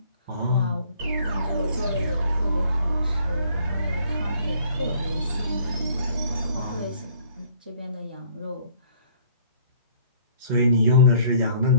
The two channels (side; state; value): both; inverted; correlation -0.58